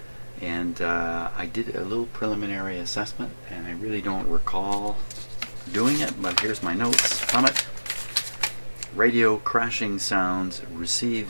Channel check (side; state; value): both; inverted; correlation -1.00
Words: And I did a little preliminary assessment, and I really don't recall doing it, but here's my notes from it. Radio crashing sounds,